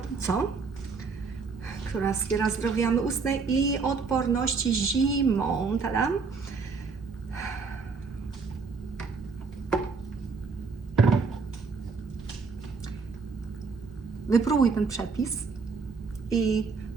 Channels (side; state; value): left; quieter; 4.8 dB